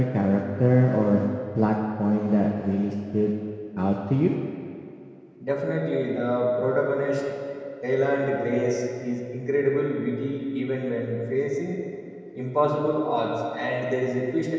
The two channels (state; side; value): identical; both; correlation 1.00